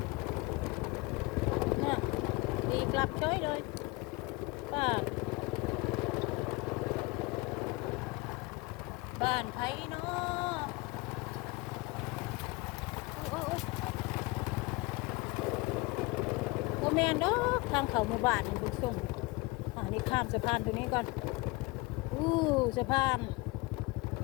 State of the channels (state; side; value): quieter; right; 24.4 dB